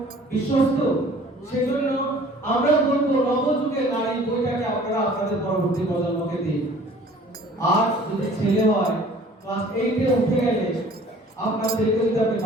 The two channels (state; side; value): normal; both; correlation 0.50